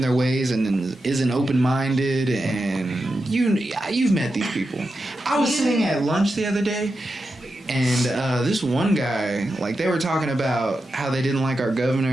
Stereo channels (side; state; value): both; normal; correlation 0.89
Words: their ways and isn't open-minded, and you've met these people. I was sitting at lunch the other day. And this one guy, like, they were talking about how they didn't like our governor,